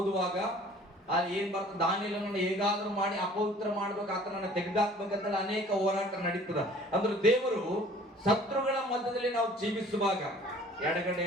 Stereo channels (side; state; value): both; normal; correlation 0.51